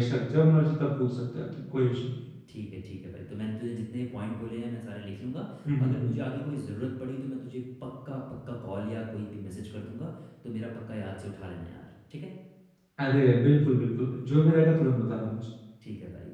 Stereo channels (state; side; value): identical; both; correlation 1.00